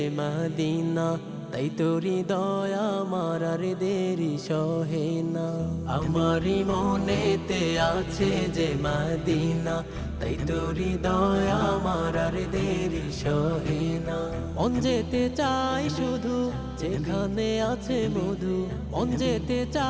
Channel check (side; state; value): both; identical; correlation 1.00